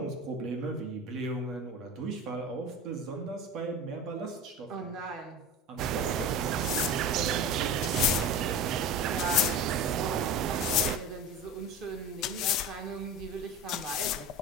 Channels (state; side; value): normal; both; correlation 0.31